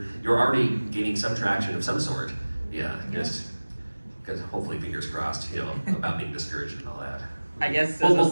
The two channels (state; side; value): inverted; both; correlation -1.00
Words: already gaining some traction of some sort. Yeah, just because hopefully, fingers crossed, about being discouraged and all that. I guess